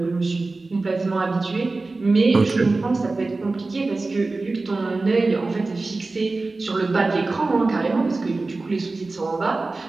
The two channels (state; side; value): quieter; left; 3.4 dB